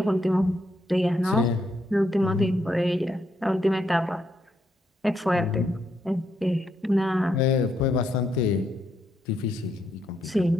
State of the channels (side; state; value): both; normal; correlation 0.77